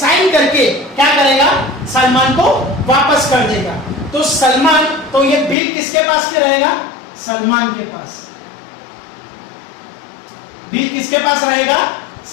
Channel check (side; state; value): right; drops out; at 5.6 s